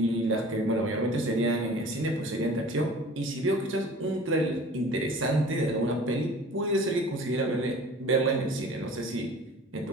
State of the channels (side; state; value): both; normal; correlation 0.44